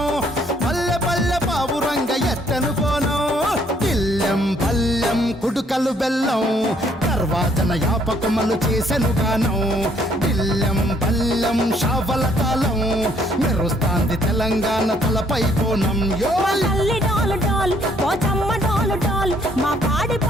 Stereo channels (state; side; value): normal; both; correlation 0.65